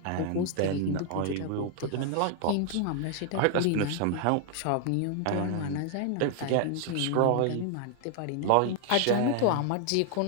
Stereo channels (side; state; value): both; different; correlation 0.00